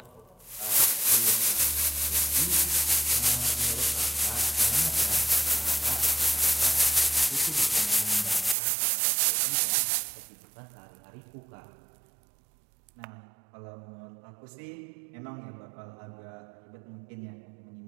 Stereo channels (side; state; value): left; drops out; at 8.6 s